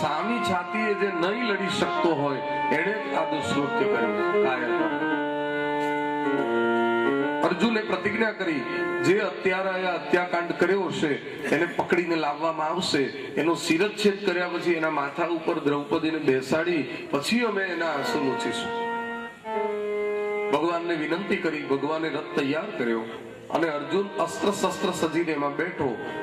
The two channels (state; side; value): identical; both; correlation 1.00